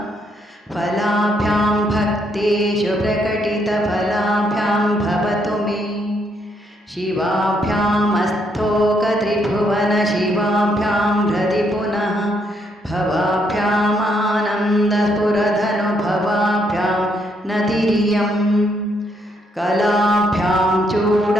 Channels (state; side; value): normal; both; correlation 0.74